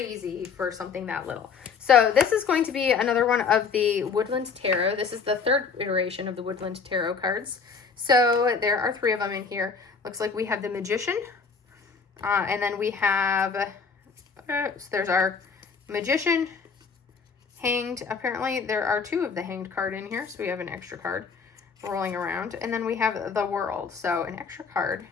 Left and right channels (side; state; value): right; quieter; 5.5 dB